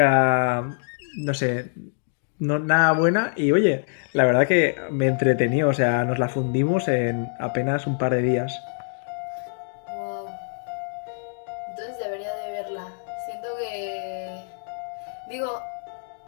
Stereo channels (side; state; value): right; silent; digital silence